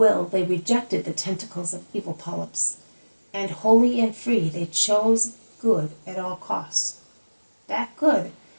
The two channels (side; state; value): both; inverted; correlation -1.00